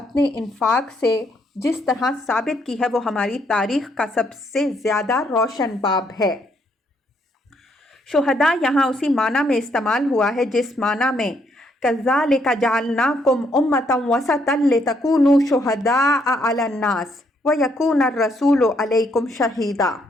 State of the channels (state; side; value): normal; both; correlation 0.72